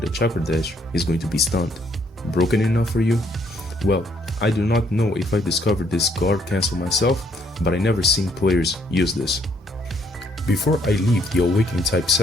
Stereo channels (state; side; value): normal; both; correlation 0.68